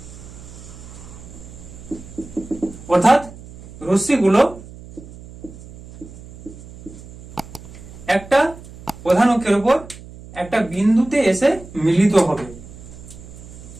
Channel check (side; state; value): right; noise; hum, 17 dB below the sound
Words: অর্থাৎ রশ্মিগুলো একটা প্রধান অক্ষের উপর একটা বিন্দুতে এসে মিলিত হবে।